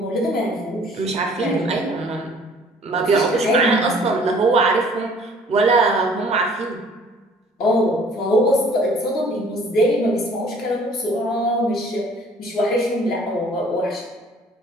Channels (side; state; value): both; normal; correlation 0.54